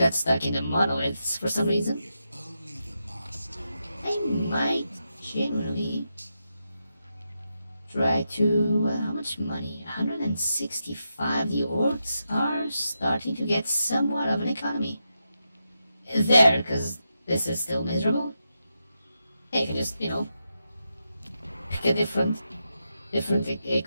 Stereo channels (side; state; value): both; inverted; correlation -0.87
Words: stuck in the monoliths for some reason. I might genuinely try to... how much money? 165. The orcs are starting to get somewhat of an economy. There, because this is still miserable. Hey, I can just, you know, pick a different